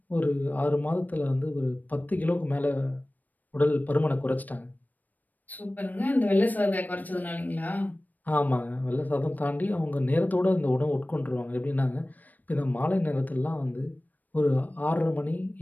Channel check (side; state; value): right; late; 0.083 ms